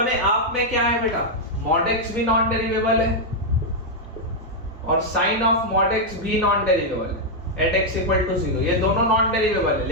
आप में क्या है बेटा, mod x भी नॉन डेरिवेबल है और sin ऑफ mod x भी नॉन डेरिवेबल है एट x इक्वल टू 0, ये दोनों नॉन डेरिवेबल है,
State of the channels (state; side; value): normal; both; correlation -0.02